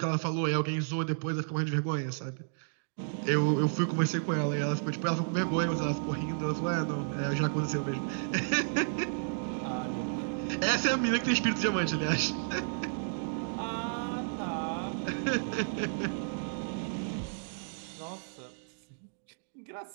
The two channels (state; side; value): silent; left; digital silence